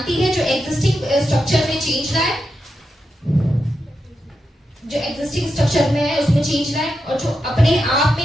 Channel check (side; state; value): both; normal; correlation 0.87